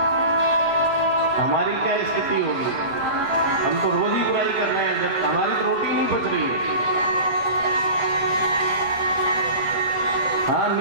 हमारी क्या स्थिति होगी? हम तो रोज ही बुराई कर रहे हैं, जब हमारी तो रोटी नहीं पच रही है। हाँ,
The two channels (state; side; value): late; left; 8.4 ms